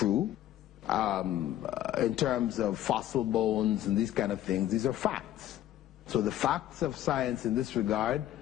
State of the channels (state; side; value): quieter; right; 12.7 dB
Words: in terms of fossil bones and these kind of things, these are facts. So the facts of science in this regard,